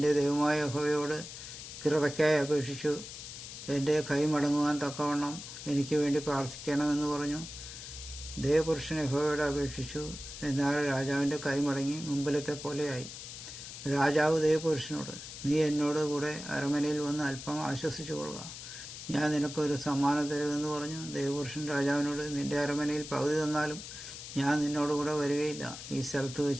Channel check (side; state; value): left; noise; hiss, 11 dB below the sound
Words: ദൈവമായ യഹോവയോട് കൃപയ്ക്കായി അപേക്ഷിച്ചു. എന്റെ കൈ മടങ്ങുവാൻ തക്കവണ്ണം എനിക്ക് വേണ്ടി പ്രാർത്ഥിക്കണമെന്ന് പറഞ്ഞു. ദൈവപുരുഷൻ യഹോവയോട് അപേക്ഷിച്ചു. എന്നാൽ രാജാവിന്റെ കൈ മടങ്ങി മുമ്പിലത്തെ പോലെയായി. രാജാവ് ദൈവപുരുഷനോട്, നീ എന്നോട് കൂടെ അരമനയിൽ വന്ന് അല്പം ആശ്വസിച്ചു കൊള്ളുക, ഞാൻ നിനക്കൊരു സമ്മാനം തരുമെന്ന് പറഞ്ഞു. ദൈവപുരുഷൻ രാജാവിനോട്, നിന്റെ അരമനയിൽ പകുതി തന്നാലും ഞാൻ നിന്നോടുകൂടെ വരികയില്ല. ഈ സ്ഥലത്ത്